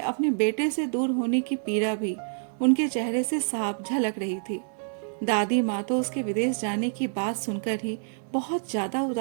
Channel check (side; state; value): left; silent; digital silence